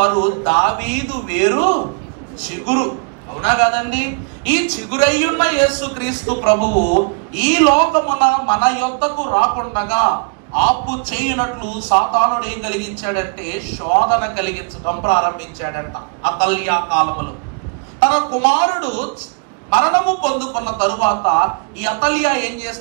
దావీదు వేరు చిగురు. అవునా కాదండి? ఈ చిగురయ్యున్న యేసుక్రీస్తు ప్రభువు ఈ లోకమున మన యొద్దకు రాకుండగా ఆపు చేయునట్లు సాతానుడు ఏం కలిగించాడంటే శోధన కలిగించడం ప్రారంభించాడంట. అతల్య కాలములో తన కుమారుడు మరణము పొందుకున్న తరువాత ఈ అతల్య ఏం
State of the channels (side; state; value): left; quieter; 32.6 dB